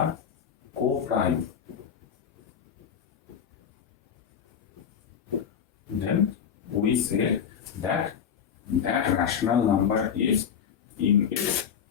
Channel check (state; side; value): quieter; right; 7.8 dB